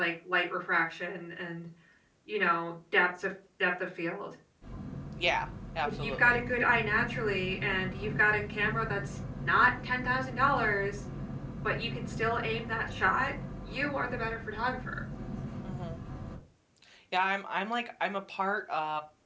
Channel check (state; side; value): identical; both; correlation 1.00